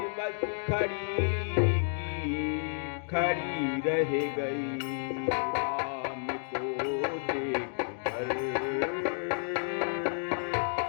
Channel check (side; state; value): right; silent; digital silence